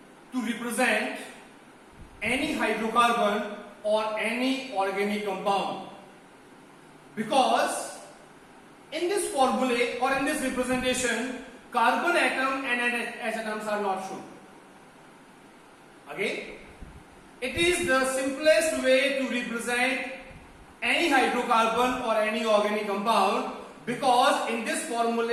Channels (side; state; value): both; identical; correlation 1.00